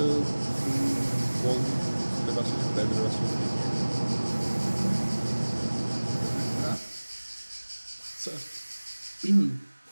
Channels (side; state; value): both; inverted; correlation -1.00